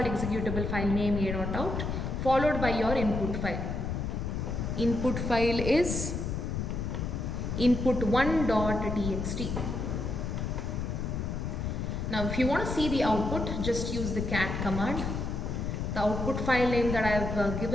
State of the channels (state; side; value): noise; left; rumble, 2 dB below the sound